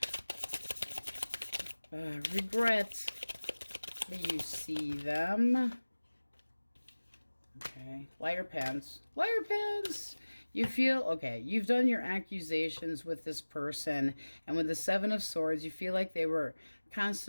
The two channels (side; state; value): both; inverted; correlation -1.00